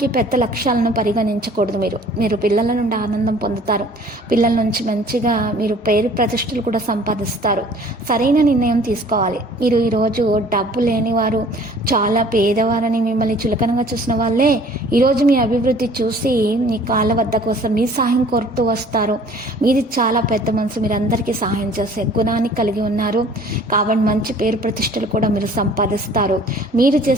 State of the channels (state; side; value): normal; both; correlation 0.52